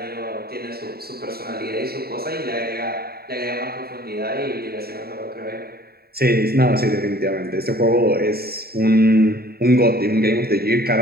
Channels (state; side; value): late; left; 0.45 ms